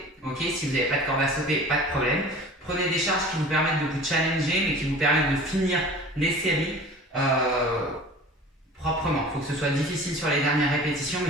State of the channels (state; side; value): normal; both; correlation 0.42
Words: ok? Si vous n'avez pas de corde à sauter, pas de problème. Prenez des charges qui vous permettent de vous challenger, mais qui vous permettent de finir les séries proprement. Il faut que ce soit difficile sur les dernières répétitions,